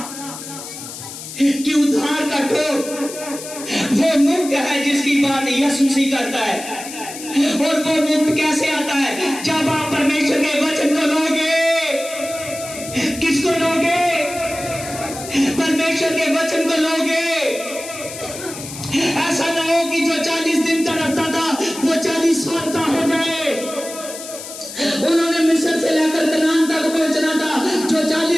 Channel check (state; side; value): noise; left; hiss, 11 dB below the sound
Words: कि उद्धार का टोप वो मुक्त है जिसकी बात यीशु मसीह करता है। और वो मुक्त कैसे आता है? जब आप परमेश्वर के वचन को लोगे। किसको लोगे? परमेश्वर के वचन को लोगे। ऐसा ना हो कि जो 40 दिन का रास्ता था वो 40 साल का हो जाए। उन्होंने मिस्र से लेकर कनान तक पहुंचना था, जो